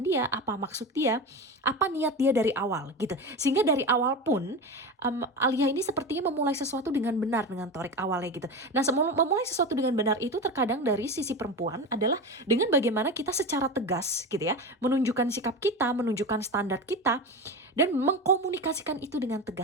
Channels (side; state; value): both; normal; correlation 0.23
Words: dia, apa maksud dia, apa niat dia dari awal gitu. Sehingga dari awal pun Alia ini sepertinya memulai sesuatu dengan benar dengan Torik awalnya gitu. Nah, memulai sesuatu dengan benar itu terkadang dari sisi perempuan adalah dengan bagaimana kita secara tegas gitu ya, menunjukkan sikap kita, menunjukkan standar kita, dan mengkomunikasikan itu dengan